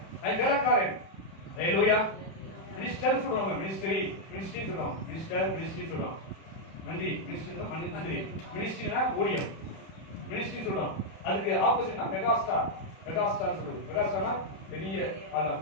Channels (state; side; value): late; right; 31 ms